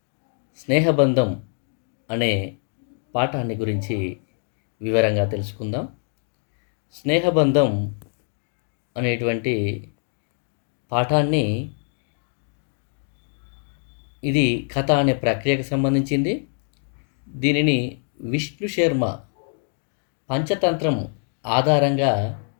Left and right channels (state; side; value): silent; right; 55 dB below the other